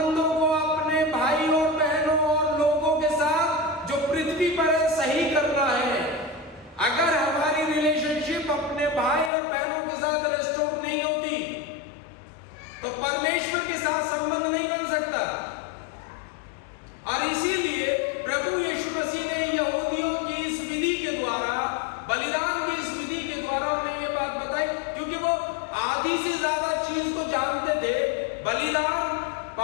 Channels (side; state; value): right; drops out; at 9.3 s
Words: को अपने भाई और बहनों और लोगों के साथ जो पृथ्वी पर है सही करना है। अगर हमारी रिलेशनशिप अपने भाई और बहनों के साथ रेस्टोर नहीं होती तो परमेश्वर के साथ संबंध नहीं बन सकता। और इसीलिए प्रभु यीशु मसीह ने यहूदियों की इस विधि के द्वारा, बलिदान की इस विधि के द्वारा उन्हें ये बात बताई, क्योंकि वो आधी से ज्यादा चीज को जानते थे। बलिदान